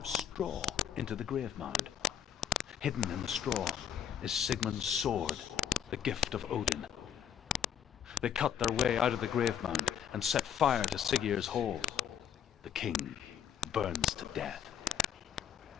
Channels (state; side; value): quieter; right; 8.8 dB